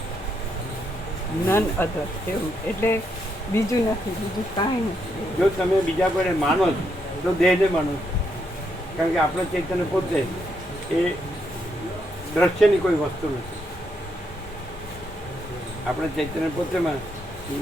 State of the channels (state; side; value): normal; both; correlation 0.78